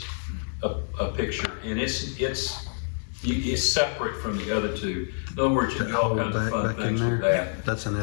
a picture, and it's separate from the other 2. In other words, you can do all kinds of fun Back in things with there, that. that's an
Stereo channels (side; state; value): right; silent; digital silence